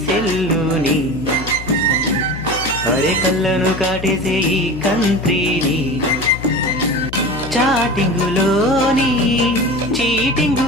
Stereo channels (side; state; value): left; noise; hum, 12 dB below the sound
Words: సెల్లుని, అరే కళ్ళను కాటేసే ఈ కంట్రీని. చాటింగులోని